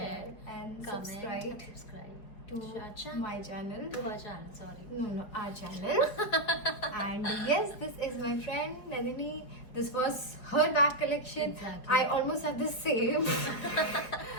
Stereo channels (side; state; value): right; late; 4.8 ms